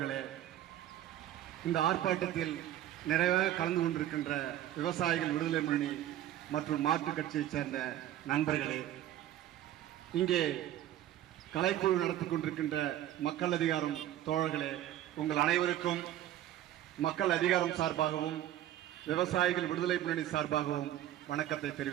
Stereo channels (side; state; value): left; quieter; 12.6 dB